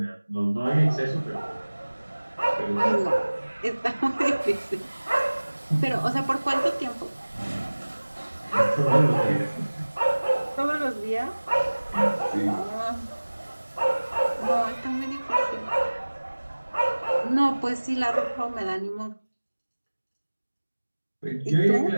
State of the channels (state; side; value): inverted; both; correlation -1.00